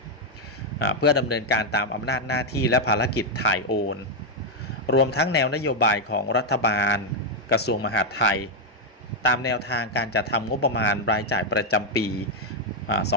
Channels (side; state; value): both; normal; correlation 0.01